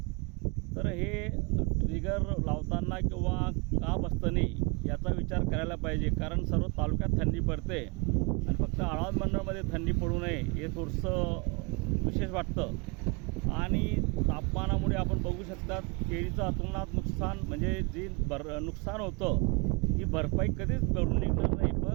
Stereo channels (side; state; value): left; quieter; 30.7 dB